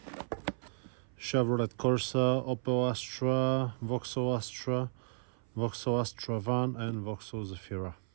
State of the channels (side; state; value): left; silent; 55 dB below the other